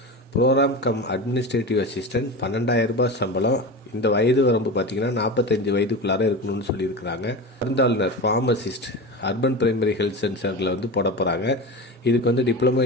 ப்ரோக்ராம் கம் அட்மினிஸ்ட்ரேட்டிவ் அசிஸ்டண்ட் 12,000 ரூபாய் சம்பளம். இந்த வயது வரம்பு பார்த்திங்கன்னா 45 வயதுக்குள்ளார இருக்கணும்னு சொல்லியிருக்கிறாங்க. மருந்தாளுநர் ஃபார்மசிஸ்ட் அர்பன் பிரைமரி ஹெல்த் சென்டரில் போட போகிறாங்க. இதுக்கு டிப்ளமோ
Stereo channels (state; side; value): normal; both; correlation 0.26